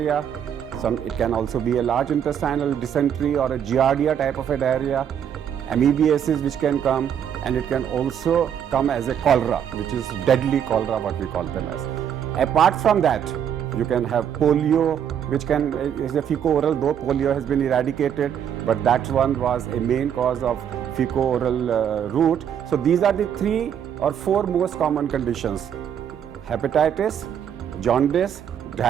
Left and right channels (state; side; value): quieter; left; 8.9 dB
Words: It can also be a large intestinal dysentery or a giardia type of a diarrhea, amoebiasis which can come, and it can also come as a cholera, which is deadly cholera, what we call them as. Apart from that, you can have polio, which is a fecal-oral, though polio has been eradicated, but that one was a main cause of fecal-oral route. So these are the 3 or 4 most common conditions: hepatitis, jaundice,